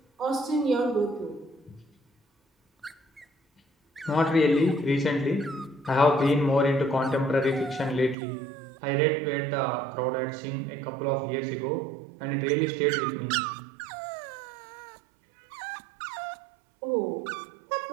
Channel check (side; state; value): left; drops out; at 8.2 s